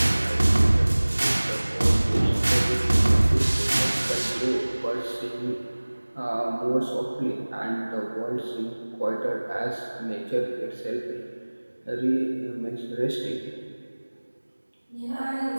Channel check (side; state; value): both; inverted; correlation -1.00